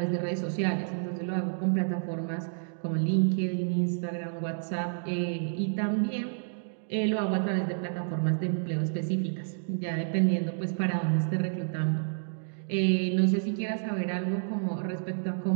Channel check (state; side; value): silent; left; digital silence